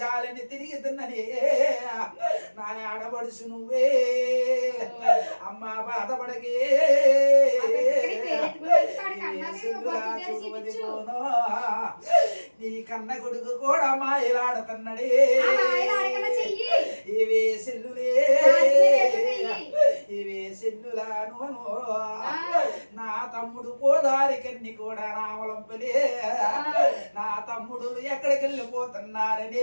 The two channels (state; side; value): inverted; both; correlation -1.00